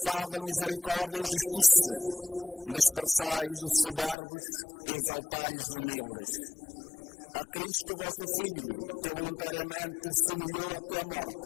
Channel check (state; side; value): drops out; right; at 4.2 s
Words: misericórdia e justiça, dispersais os soberbos e exaltais os humildes. A Cristo, vosso Filho, que voluntariamente se humilhou até a